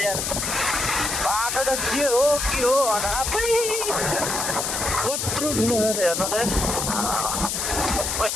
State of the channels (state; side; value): noise; left; hiss, 1 dB below the sound